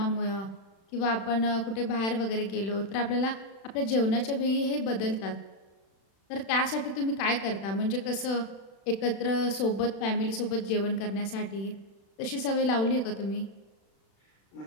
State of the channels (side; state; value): right; late; 36 ms